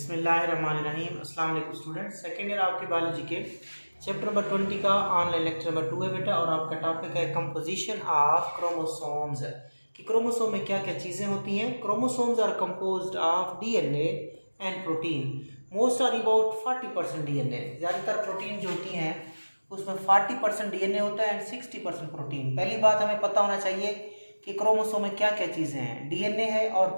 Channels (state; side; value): inverted; both; correlation -1.00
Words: अस्सलाम वालेकुम स्टूडेंट। सेकेंड ईयर आपकी बायोलॉजी के चैप्टर नंबर 20 का ऑनलाइन लेक्चर नंबर 2 है बेटा, और आपका टॉपिक है कंपोजिशन ऑफ क्रोमोसोम्स। कि क्रोमोसोम में क्या क्या चीज़ें होती हैं। Chromosomes are composed of DNA and protein. Most are about 40% DNA. ज़्यादातर प्रोटीन जो होती हैं उसमें 40% डीएनए होता है एंड 60% प्रोटीन। पहली बात हमें पता होना चाहिए कि क्रोमोसोम में क्या क्या चीज़ें हैं। डीएनए है और